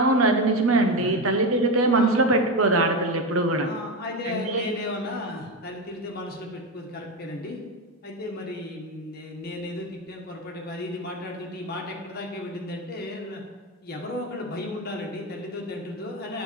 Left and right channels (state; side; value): normal; both; correlation 0.16